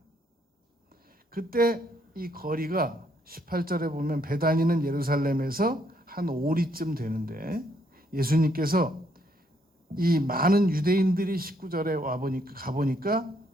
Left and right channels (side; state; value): both; normal; correlation 0.71